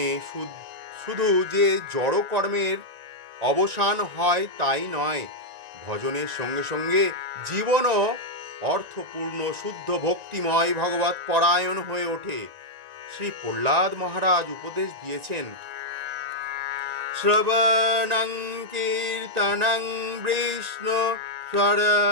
শুধু যে জড় কর্মের অবসান হয় তাই নয়, ভজনের সঙ্গে সঙ্গে জীবনও অর্থপূর্ণ শুদ্ধ ভক্তিময় ভগবত পরায়ণ হয়ে ওঠে। শ্রী প্রহ্লাদ মহারাজ উপদেশ দিয়েছেন, শ্রবণং কীর্তনং বিষ্ণু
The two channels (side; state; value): left; late; 1.9 ms